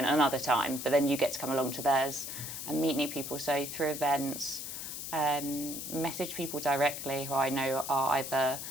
another time, but then you get to come along to theirs and meet new people. So through events, message people directly who I know are either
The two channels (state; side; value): noise; left; hiss, 7 dB below the sound